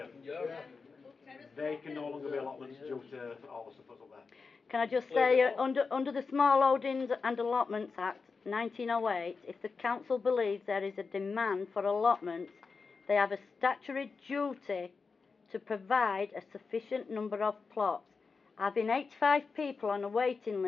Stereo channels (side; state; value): right; quieter; 4.7 dB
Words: Yeah. They can no longer be allotments due to all the stuff that's up there. Can I just say, under the Small Holdings and Allotments Act 1908, if the council believes there is a demand for allotments, they have a statutory duty to provide a sufficient number of plots. Having 85 people on a waiting